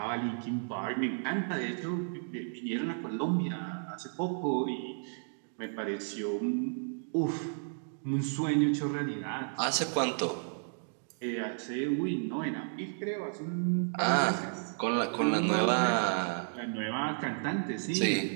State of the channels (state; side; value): silent; left; digital silence